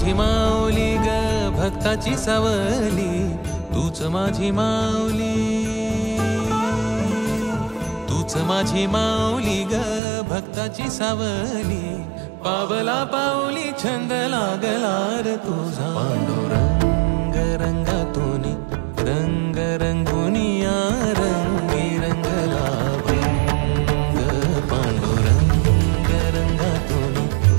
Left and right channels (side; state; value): left; drops out; at 10.0 s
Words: माऊली ग भक्ताची सावली, तूच माझी माऊली, तूच माझी माऊली ग भक्ताची सावली। पावला पाऊली छंद लागला रे तुझा। पांडुरंग रंगातून रंग रंगुनिया रंगी रंगला भंग। पांडुरंग रंगातून